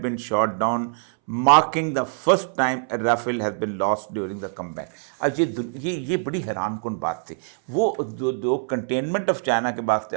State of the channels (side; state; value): left; silent; 63 dB below the other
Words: been shot down, marking the first time a Rafale has been lost during the combat. अब ये बड़ी हैरानकुन बात थी। वो जो कंटेनमेंट ऑफ चाइना के बाद